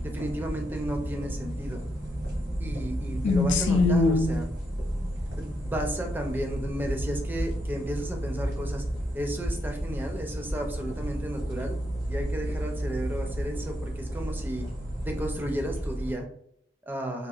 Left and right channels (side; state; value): both; normal; correlation 0.81